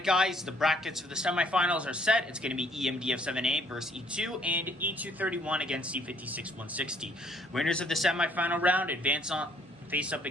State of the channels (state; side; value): normal; both; correlation 0.63